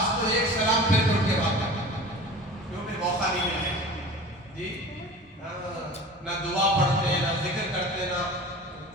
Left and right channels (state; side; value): normal; both; correlation 0.38